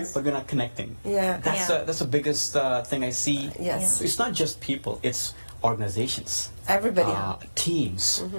but we're not connecting. Yeah. That's the biggest thing I see. Yes. So it's not just people; it's organizations, Everybody. teams,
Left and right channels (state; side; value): inverted; both; correlation -1.00